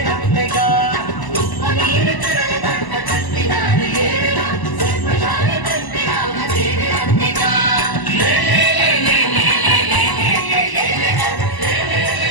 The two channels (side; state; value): right; late; 1.0 ms